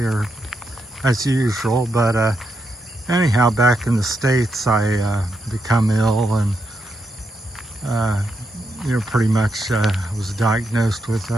or as usual. But anyhow, back in the States, I become ill and pretty much was diagnosed with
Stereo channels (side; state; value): both; normal; correlation 0.82